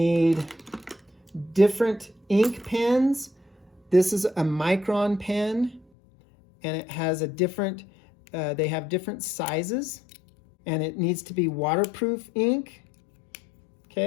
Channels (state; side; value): drops out; right; at 5.9 s